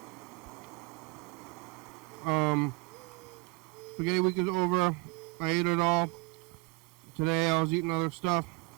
Spaghetti week is over. I ate it all. Today I was eating other stuff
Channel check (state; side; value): quieter; left; 28.0 dB